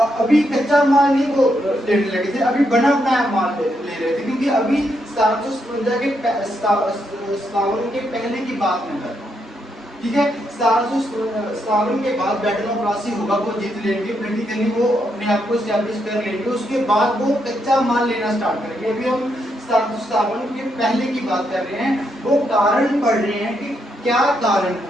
कच्चा माल नहीं वो लेने लगे थे, अभी बना बनाया माल ले रहे थे। क्योंकि अभी 1757 के पहले की बात मैं कर रहा हूँ, ठीक है। 1757 के बाद बैटल ऑफ प्लासी होगा, वो जीत लेंगे, प्रैक्टिकली वो अपने आप को एस्टैब्लिश कर लेंगे। उसके बाद वो कच्चा माल लेना स्टार्ट करेंगे। अभी हम 1757 के पहले की बात कर रहे हैं। वो कारण पढ़ रहे हैं कि क्या कारण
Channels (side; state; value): both; normal; correlation 0.79